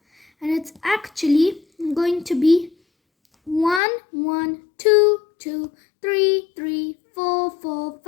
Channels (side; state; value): right; drops out; at 3.8 s